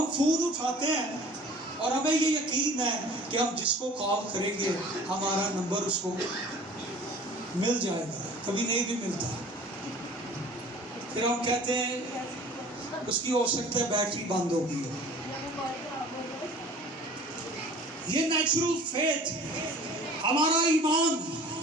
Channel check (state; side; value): normal; both; correlation 0.46